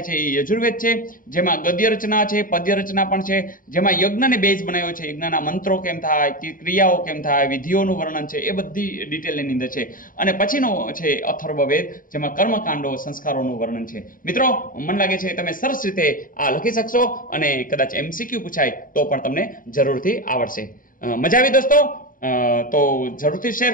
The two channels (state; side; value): late; right; 0.40 ms